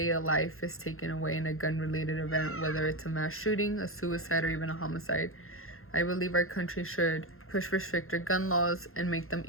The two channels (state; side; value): late; right; 0.61 ms